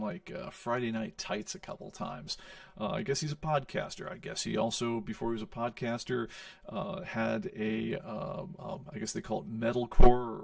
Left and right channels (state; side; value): identical; both; correlation 1.00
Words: Friday Night Tights a couple times. I guess he's a podcaster. I guess he also, before he was a podcaster, had a, I guess they call it metalcore